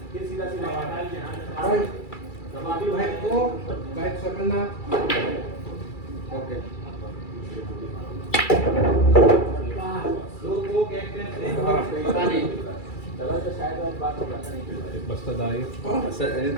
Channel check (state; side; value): late; right; 2.3 ms